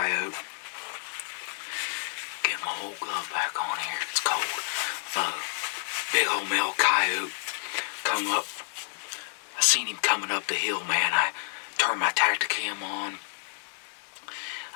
Get my old glove back on here. It's cold. Big old male coyote come up. I seen him coming up the hill, man. I turned my Tacticam on.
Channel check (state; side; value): silent; right; 56 dB below the other